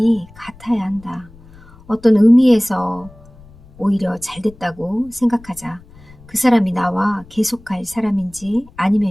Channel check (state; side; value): noise; left; rumble, 23 dB below the sound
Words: 같아야 한다. 어떤 의미에서 오히려 잘됐다고 생각하자. 그 사람이 나와 계속할 사람인지